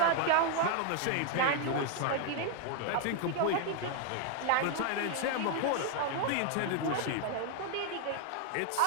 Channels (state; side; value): different; both; correlation 0.00